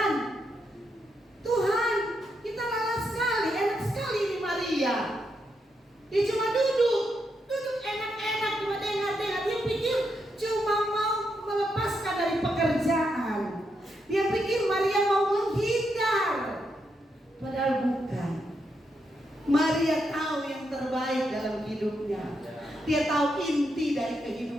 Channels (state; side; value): normal; both; correlation 0.81